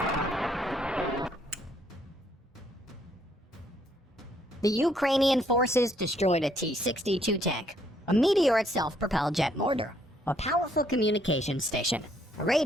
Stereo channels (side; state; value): both; normal; correlation 0.69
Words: The Ukrainian forces destroyed a T-62 tank, a Meteor self-propelled jet mortar, a powerful communications station, a